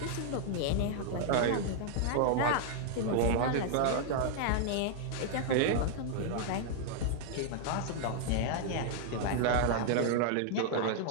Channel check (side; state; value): both; different; correlation -0.01